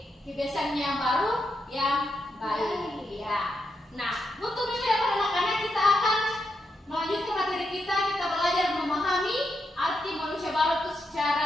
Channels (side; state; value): both; normal; correlation 0.83